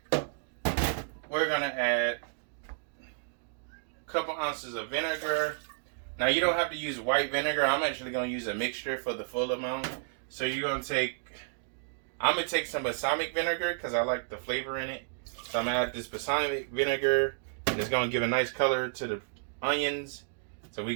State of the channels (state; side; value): silent; left; digital silence